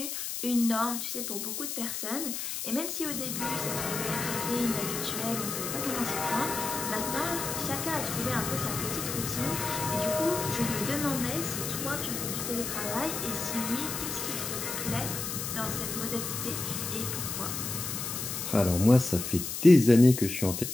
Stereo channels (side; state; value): left; noise; hiss, 4 dB below the sound